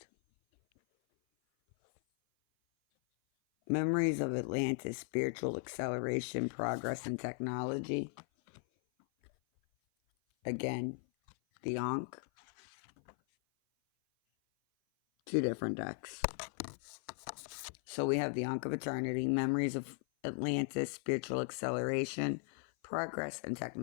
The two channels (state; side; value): silent; right; 53 dB below the other